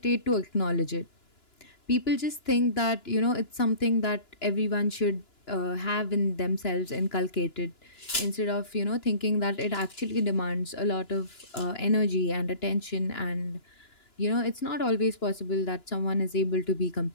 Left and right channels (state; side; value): late; right; 2.9 ms